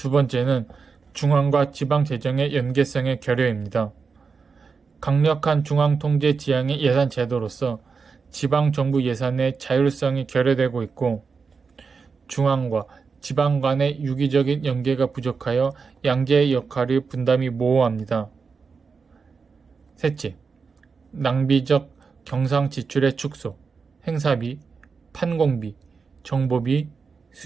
번째는 중앙과 지방 재정의 연계성의 결여입니다. 강력한 중앙 통제 지향의 예산 제도로서 지방 정부 예산의 자율성이 결여되고 있고 중앙과 지방 간의 유기적인 연계가 부족하여 양재의 역할의 분담이 모호합니다. 셋째, 낭비적 경상 지출의 축소, 행사비, 판공비, 정보비,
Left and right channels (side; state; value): left; quieter; 5.1 dB